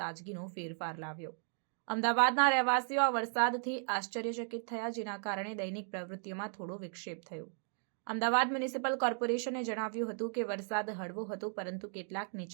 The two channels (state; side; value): silent; left; 54 dB below the other